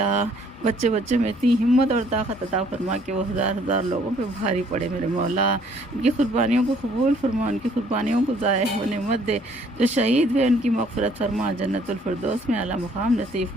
بچے میں اتنی ہمت اور طاقت عطا فرما کہ وہ ہزار لوگوں پہ بھاری پڑے میرے مولا۔ ان کی قربانیوں کو قبول فرما، ان کی قربانیوں کو ضائع ہونے مت دے۔ جو شہید ہوئے ان کی مغفرت فرما، جنت الفردوس میں اعلیٰ مقام نصیب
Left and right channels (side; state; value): both; normal; correlation 0.62